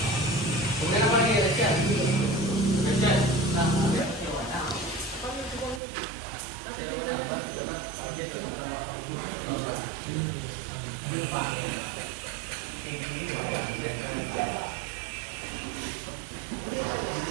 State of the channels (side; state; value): left; drops out; at 5.8 s